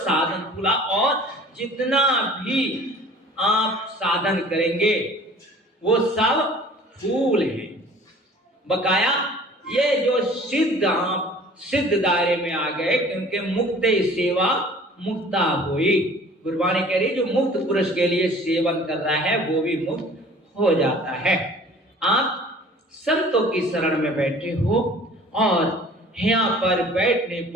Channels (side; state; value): both; normal; correlation 0.48